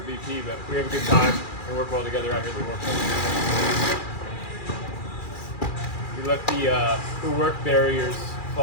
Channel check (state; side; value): late; right; 2.4 ms